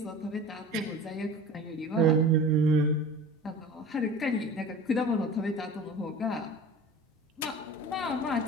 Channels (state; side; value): normal; both; correlation 0.38